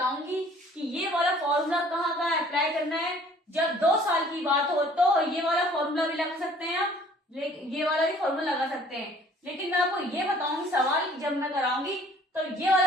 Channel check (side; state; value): both; normal; correlation 0.55